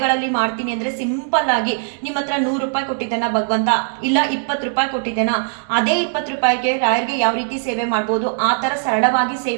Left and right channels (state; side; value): silent; left; digital silence